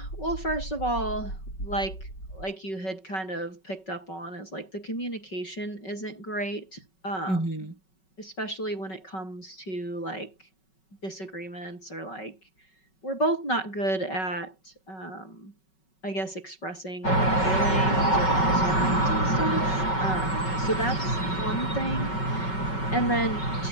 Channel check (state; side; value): late; right; 5.3 ms